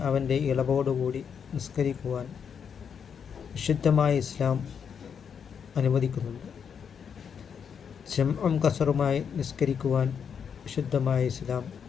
അവൻ്റെ ഇളവോടുകൂടി നിസ്കരിക്കുവാൻ വിശുദ്ധമായ ഇസ്ലാം അനുവദിക്കുന്നുണ്ട്. ജംഉം കസറുമായി നിസ്കരിക്കുവാൻ വിശുദ്ധമായ ഇസ്ലാം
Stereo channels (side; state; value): right; quieter; 7.1 dB